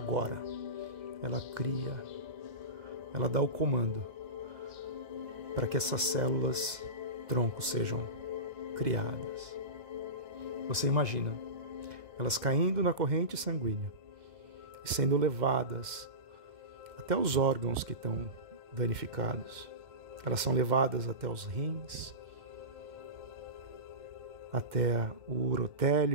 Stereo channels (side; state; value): left; late; 2.0 ms